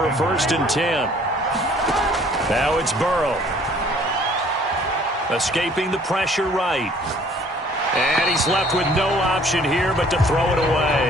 a 1st and 10. Now it's Burrow. Escaping the pressure right. And he's left with no option here but to throw it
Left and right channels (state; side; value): normal; both; correlation 0.57